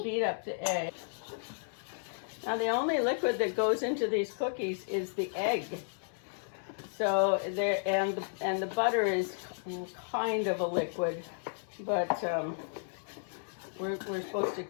beat up the egg. Now the only liquid that goes into these cookies is the egg. So there, and the butter is kind of a liquid, but we're supposed to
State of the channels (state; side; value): silent; right; 56 dB below the other